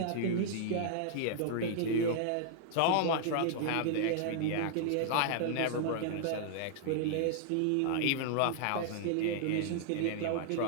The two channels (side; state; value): both; different; correlation -0.01